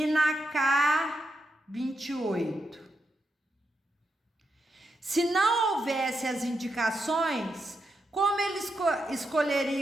na K28. Se não houvesse as indicações, como eles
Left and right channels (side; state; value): both; normal; correlation 0.84